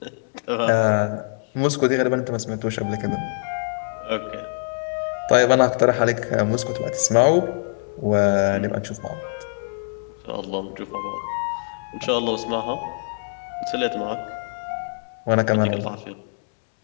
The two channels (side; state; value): right; silent; digital silence